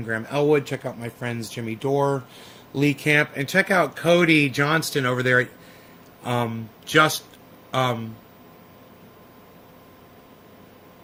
Graham Elwood. Check out my friends Jimmy Dore, Lee Camp, and check out Cody Johnston over there at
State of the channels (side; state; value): both; identical; correlation 1.00